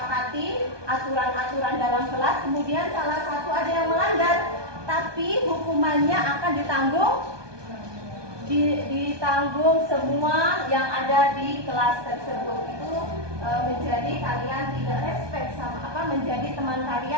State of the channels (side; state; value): left; late; 1.2 ms